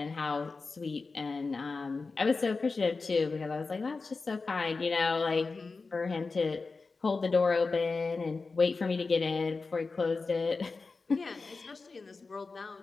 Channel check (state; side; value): quieter; right; 4.1 dB